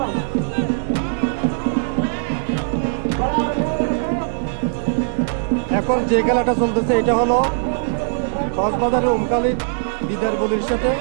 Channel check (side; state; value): left; silent; 56 dB below the other